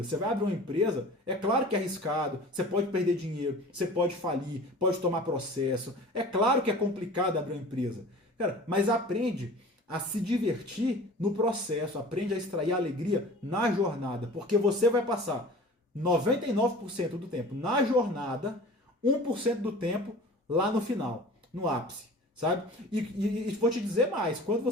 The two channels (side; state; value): both; normal; correlation 0.41